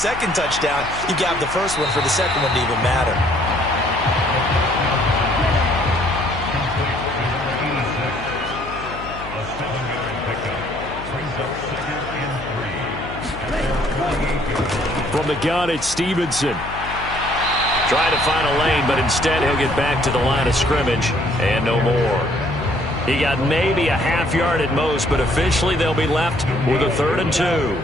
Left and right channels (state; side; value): noise; left; hum, 13 dB below the sound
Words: touchdown. You got the 1st one for the 2nd one to even matter. From the gun, it's Stevenson. Trying to find a lane, but instead he'll get back to the line of scrimmage and no more. He got maybe a half yard at most, but officially they'll be left with a 3rd and 2.